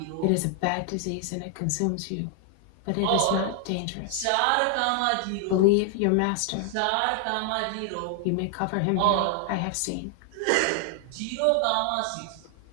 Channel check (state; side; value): different; both; correlation 0.00